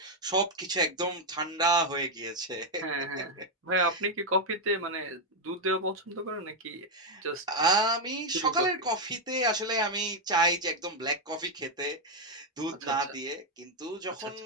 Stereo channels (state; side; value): normal; both; correlation 0.02